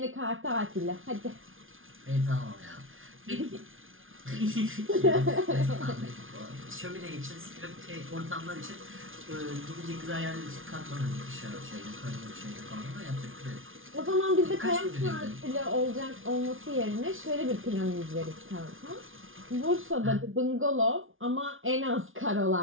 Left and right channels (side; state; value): left; late; 0.58 ms